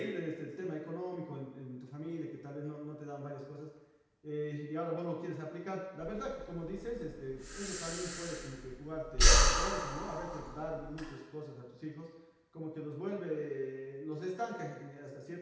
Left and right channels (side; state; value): both; identical; correlation 1.00